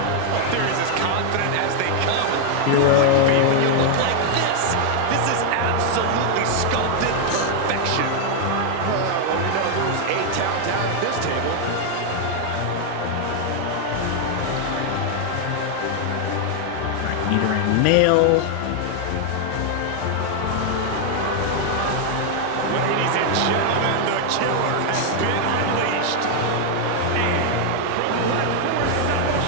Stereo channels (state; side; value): different; both; correlation 0.00